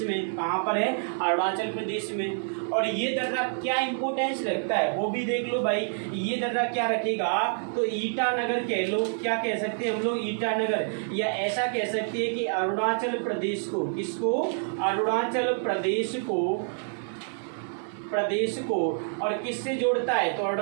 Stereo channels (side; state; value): left; silent; 60 dB below the other